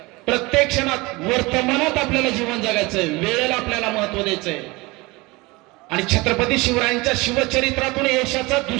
प्रत्येक क्षणात वर्तमानात आपल्याला जीवन जगायचंय, वेळेला आपल्याला महत्व द्यायचंय. आणि छत्रपती शिवरायांच्या शिवचरित्रातून यशाचा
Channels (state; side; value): quieter; left; 23.4 dB